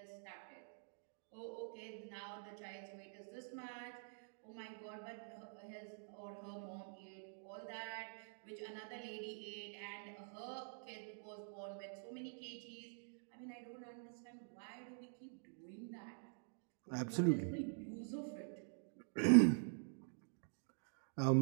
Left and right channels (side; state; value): left; silent; digital silence